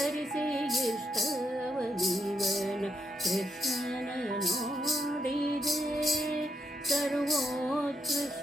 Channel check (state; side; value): normal; both; correlation 0.79